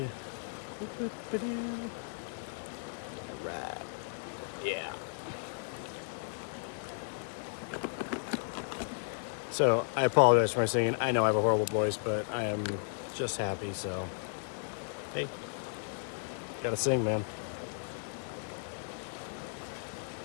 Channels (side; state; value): right; silent; digital silence